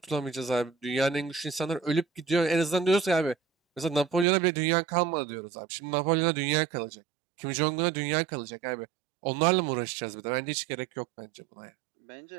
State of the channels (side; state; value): left; drops out; at 4.2 s